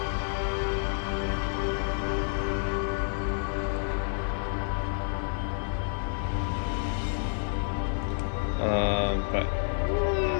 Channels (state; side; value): silent; right; digital silence